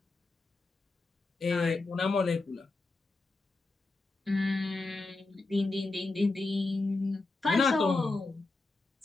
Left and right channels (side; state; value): right; quieter; 3.4 dB